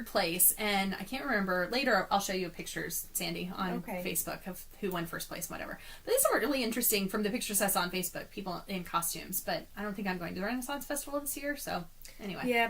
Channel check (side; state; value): both; identical; correlation 1.00